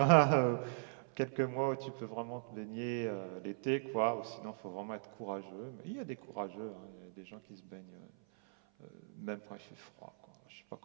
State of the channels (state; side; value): silent; left; 52 dB below the other